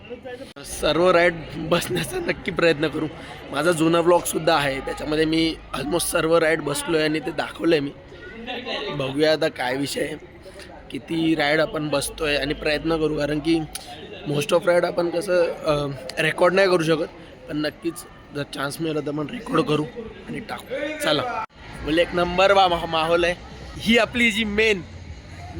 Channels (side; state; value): both; identical; correlation 1.00